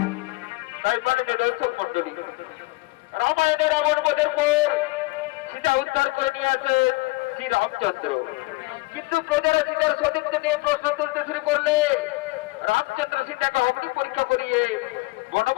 তাই মাননীয় দর্শক মন্ডলী, রামায়ণের রাবণবধের পর সীতা উদ্ধার করে নিয়ে আসেন শ্রী রামচন্দ্র। কিন্তু প্রজারা সীতার সতীত্ব নিয়ে প্রশ্ন তুলতে শুরু করলে রামচন্দ্র সীতাকে অগ্নি পরীক্ষা করিয়ে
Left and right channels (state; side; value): quieter; right; 22.9 dB